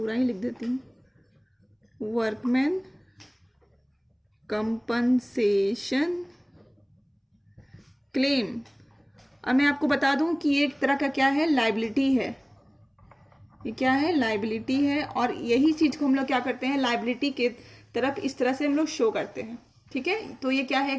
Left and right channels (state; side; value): identical; both; correlation 1.00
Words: ही लिख देती हूँ, वर्कमैन कंपनसेशन क्लेम। अब मैं आपको बता दूं कि ये एक तरह का क्या है, लाइबिलिटी है। ये क्या है, लाइबिलिटी है, और यही चीज को हम लोग क्या करते हैं, लाइबिलिटी के तरफ इस तरह से हम लोग शो करते हैं, ठीक है। तो ये क्या है,